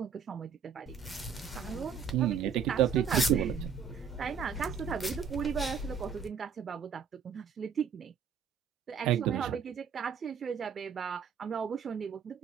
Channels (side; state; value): left; quieter; 6.8 dB